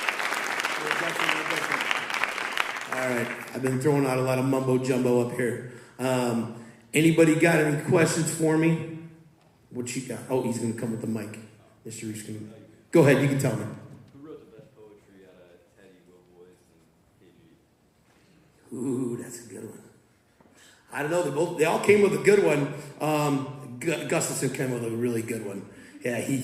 All right, I've been throwing out a lot of mumbo jumbo up here. Anybody got any questions for me? What you got? Oh, he's going to come with the mic. Mr. Reese, go ahead. You can tell me. Who wrote the best poetry out of Teddy, Will Boys, and KG? Ooh, that's a good one. I don't know. They all came with a good one. Gustafson came with a really good one. Yeah,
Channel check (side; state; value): both; identical; correlation 1.00